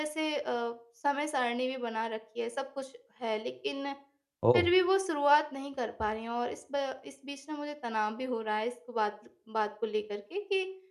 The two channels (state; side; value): identical; both; correlation 1.00